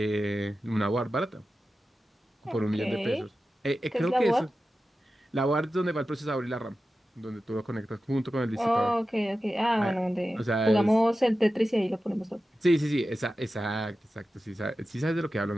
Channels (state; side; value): normal; both; correlation 0.93